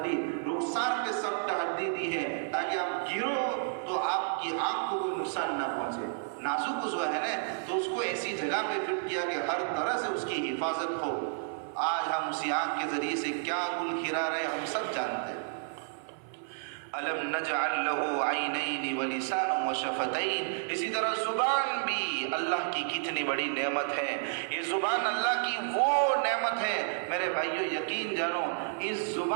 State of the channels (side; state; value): left; silent; 57 dB below the other